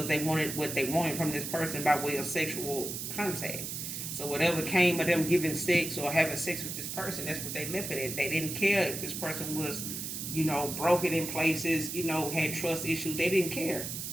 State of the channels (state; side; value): noise; right; hiss, 5 dB below the sound